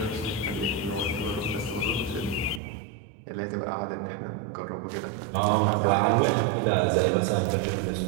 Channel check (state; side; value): drops out; left; at 2.6 s